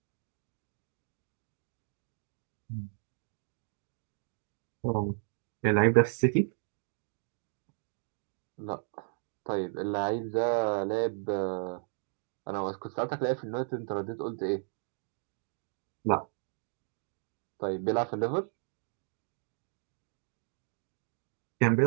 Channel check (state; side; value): silent; left; digital silence